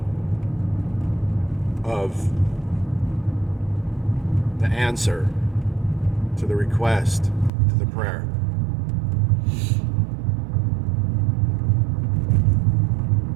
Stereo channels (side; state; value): left; drops out; at 7.5 s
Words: of the answer to the request, to the prayer?